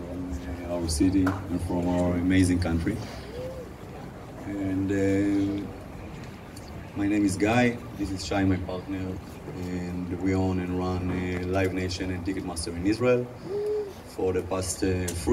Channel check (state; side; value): identical; both; correlation 1.00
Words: our city and from our amazing country. And my name is Guy, this is Shai, my partner, and we own and run Live Nation and Ticketmaster in Israel for the past